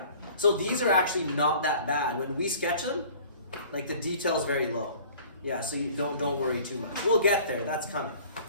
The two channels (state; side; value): inverted; both; correlation -0.49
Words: So these are actually not that bad. When we sketch them, like the detail's very low. Yeah, so you don't worry too much. We'll get there. That's coming.